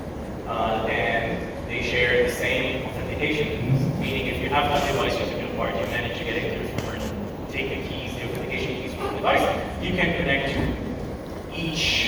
And they share the same authentication keys. Meaning if you have one device using a card, you manage to get into your phone and take the keys, the authentication keys from the device, you can connect to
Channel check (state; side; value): identical; both; correlation 1.00